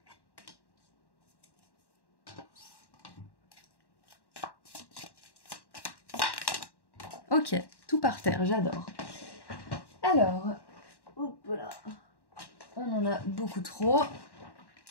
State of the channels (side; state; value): right; late; 1.1 ms